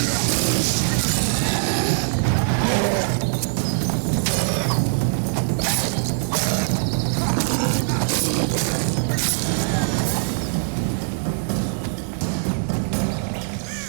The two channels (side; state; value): left; silent; digital silence